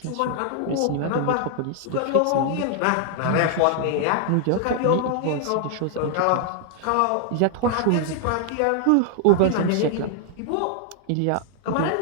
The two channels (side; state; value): both; different; correlation 0.00